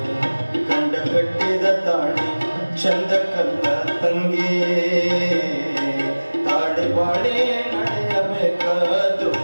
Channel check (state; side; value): inverted; both; correlation -1.00